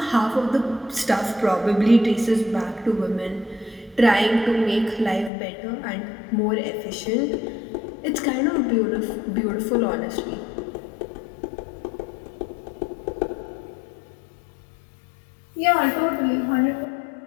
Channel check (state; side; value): drops out; right; at 5.3 s